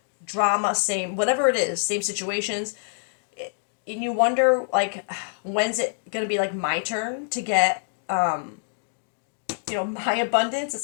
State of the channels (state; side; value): silent; right; digital silence